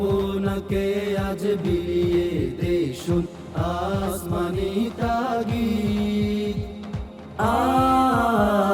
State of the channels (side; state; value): both; identical; correlation 1.00